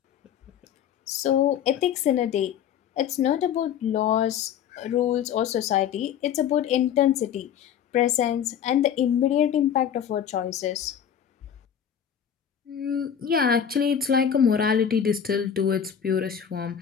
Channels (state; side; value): quieter; right; 8.7 dB